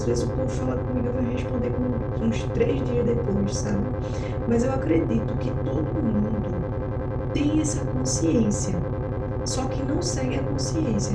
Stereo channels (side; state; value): both; identical; correlation 1.00